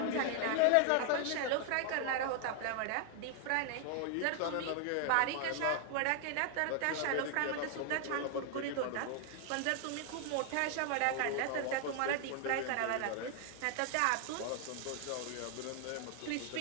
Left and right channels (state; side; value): different; both; correlation 0.00